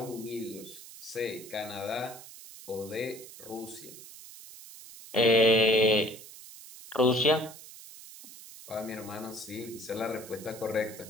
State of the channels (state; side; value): noise; right; hiss, 16 dB below the sound